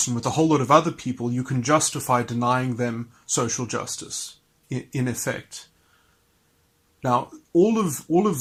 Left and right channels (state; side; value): identical; both; correlation 1.00